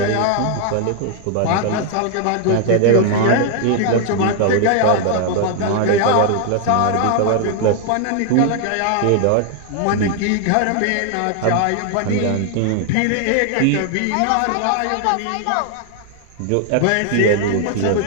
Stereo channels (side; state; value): both; different; correlation 0.00